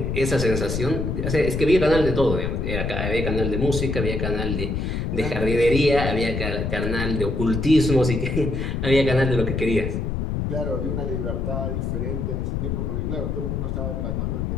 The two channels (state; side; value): noise; left; rumble, 1 dB below the sound